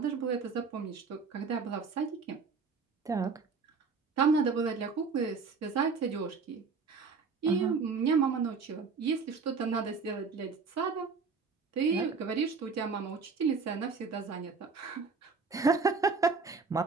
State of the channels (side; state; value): left; quieter; 4.9 dB